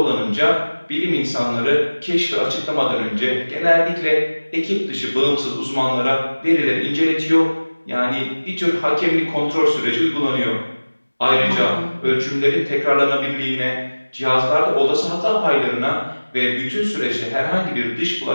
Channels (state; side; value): inverted; both; correlation -1.00